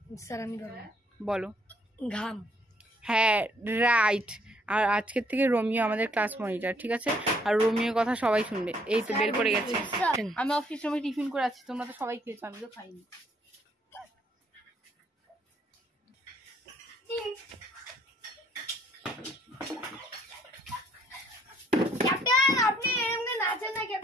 স্যার আমি বলবো বলো। ঘাম। হ্যাঁ রাইট। আর আজকের থেকে রোমিও আমাদের ক্লাস মনিটর, ঠিক আছে? আর রোমিওর কথা সবাই শুনবে। এই তো বের করে গেছে। আমি অফিস রুমে টিফিন করে আছি, তোমরা তো সবাই খেয়েছো, আমি তো খাইনি। ক্যাপ্টেন আপনি এমনি নাচেন না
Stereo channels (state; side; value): normal; both; correlation 0.66